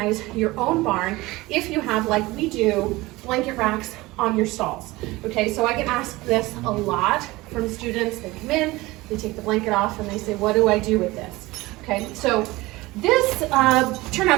your own barn if you have, like we do, blanket racks on your stalls. Okay, so I get asked this a lot from students. They come in, they take the blanket off, and they say, what do I do with this? Okay, so this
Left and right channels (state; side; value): quieter; left; 20.4 dB